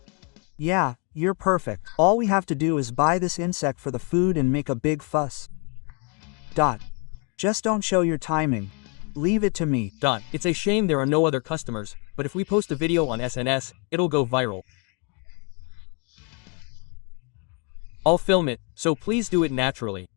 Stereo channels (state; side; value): quieter; right; 35.6 dB